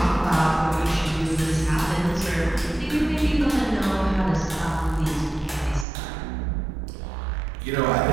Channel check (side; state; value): left; drops out; at 5.9 s